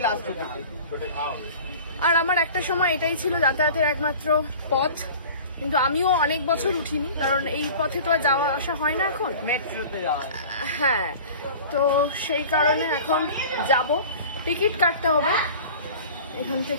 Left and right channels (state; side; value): inverted; both; correlation -0.41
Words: লাস্ট উঠেছি। আর আমার একটা সময় এটাই ছিল যাতায়াতের একমাত্র পথ। কিন্তু আমিও অনেক বছর উঠিনি, কারণ এই পথে তো আর যাওয়া আসা হয় না এখন, মেট্রোতে যাওয়া। হ্যাঁ, তো সেই কারণে এখন যাব। টিকিট কাটতে হবে এখান